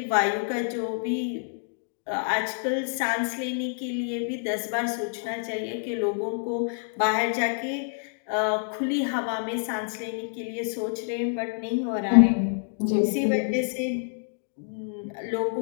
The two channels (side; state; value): right; silent; digital silence